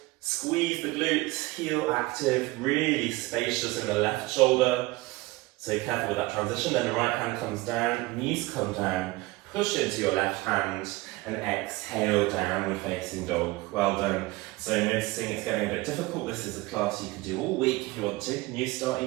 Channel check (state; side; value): quieter; left; 21.1 dB